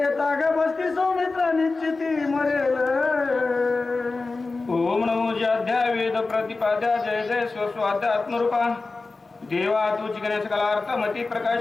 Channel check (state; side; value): quieter; right; 3.7 dB